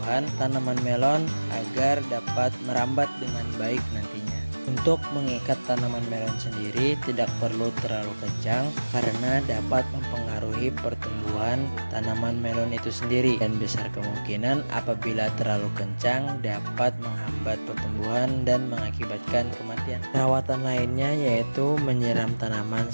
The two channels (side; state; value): both; inverted; correlation -1.00